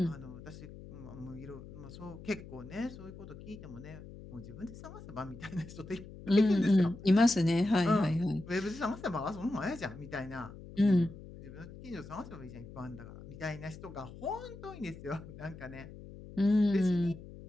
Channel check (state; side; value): noise; left; hum, 15 dB below the sound